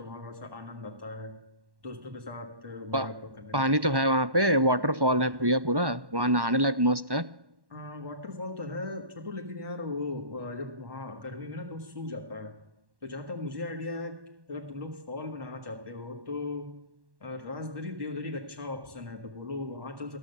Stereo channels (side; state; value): left; late; 1.1 ms